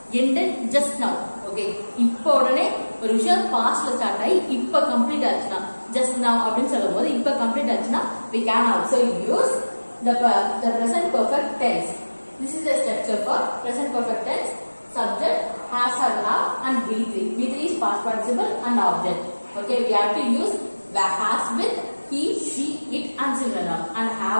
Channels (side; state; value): both; inverted; correlation -1.00